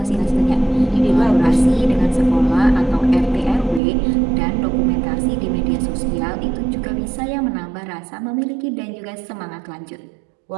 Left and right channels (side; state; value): left; drops out; at 3.8 s